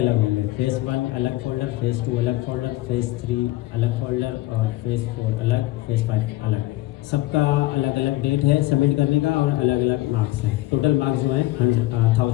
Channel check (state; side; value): quieter; right; 17.9 dB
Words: होंगे, फेज़ 1 अलग फोल्डर, फेज़ 2 अलग फोल्डर, फेज़ 3 अलग फोल्डर, और फेज़ 4 अलग, फेज़ 5 अलग। सबका अलग अलग डेट है सबमिट करने का, और अलग अलग मार्क्स हैं। टोटल मार्क्स जो है